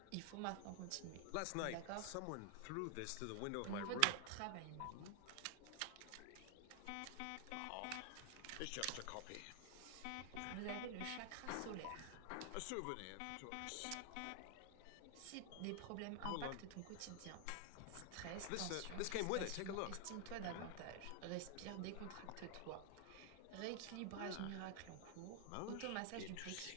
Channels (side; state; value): both; different; correlation 0.00